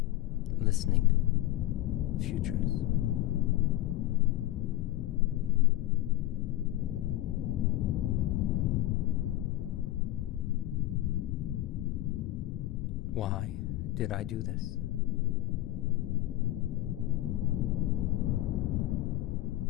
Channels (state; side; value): quieter; right; 15.8 dB